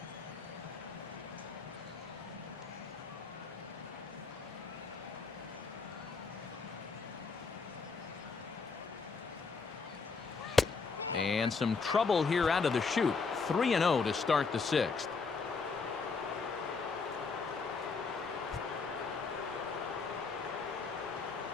And some trouble here out of the chute. 3-0 to start the 6th.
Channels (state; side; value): quieter; right; 4.8 dB